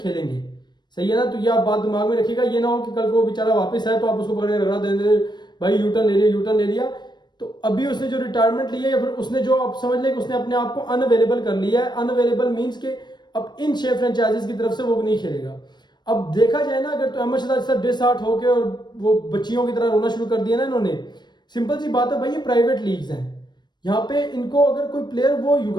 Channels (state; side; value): late; right; 0.21 ms